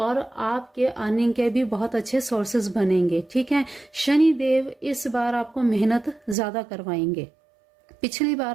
आपके अर्निंग के भी बहुत अच्छे सोर्सेज बनेंगे। ठीक है, शनि देव इस बार आपको मेहनत ज़्यादा करवाएंगे। पिछली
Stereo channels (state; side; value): drops out; left; at 6.4 s